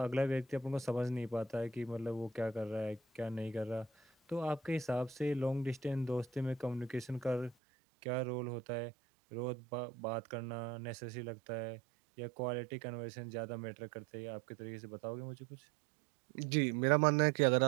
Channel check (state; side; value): drops out; left; at 7.6 s